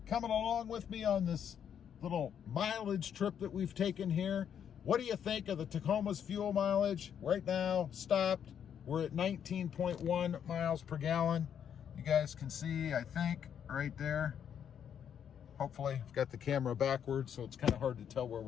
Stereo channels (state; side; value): quieter; right; 8.6 dB